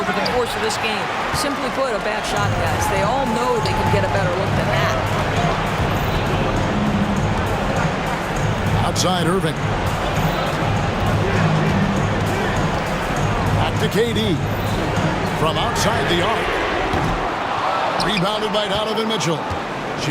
the course of this game. Simply put, a bad shot, guys. They all know they can get a better look than that. Outside Irving. Back to KD. From outside the arc. Rebounded by Donovan Mitchell.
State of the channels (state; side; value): identical; both; correlation 1.00